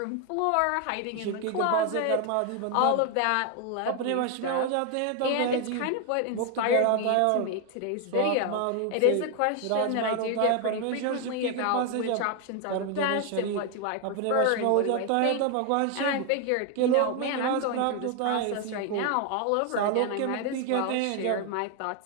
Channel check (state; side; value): different; both; correlation 0.01